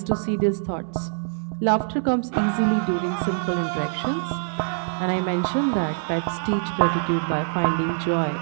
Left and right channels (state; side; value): silent; left; 61 dB below the other